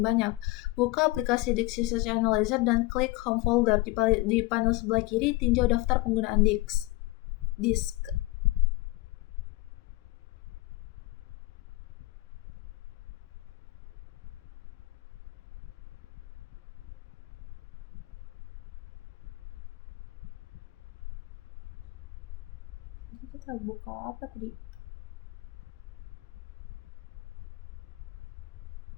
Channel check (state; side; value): quieter; right; 20.1 dB